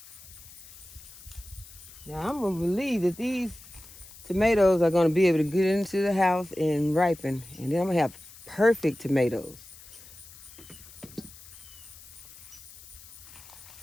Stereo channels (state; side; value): noise; left; hiss, 19 dB below the sound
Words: Now I'm gonna believe that these tomatoes are gonna be able to get into the house and ripen, and then I'm gonna have perfect tomatoes.